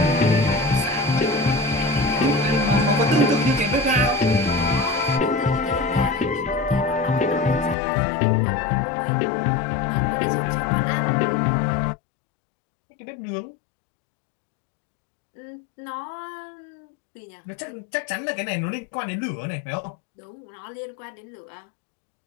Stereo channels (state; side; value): drops out; right; at 7.8 s